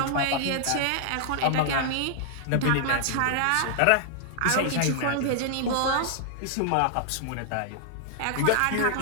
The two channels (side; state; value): both; different; correlation -0.01